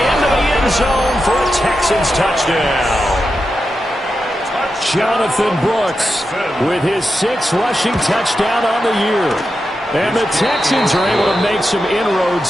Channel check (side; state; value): both; normal; correlation 0.89